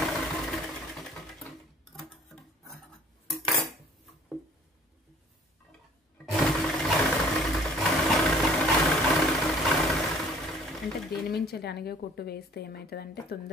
అంటే దీని మించి అనిగే కుట్టు వేస్తే ఏమవుతుందంటే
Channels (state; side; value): normal; both; correlation 0.54